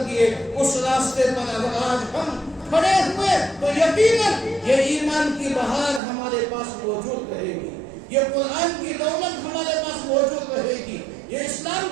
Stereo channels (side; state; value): left; drops out; at 6.0 s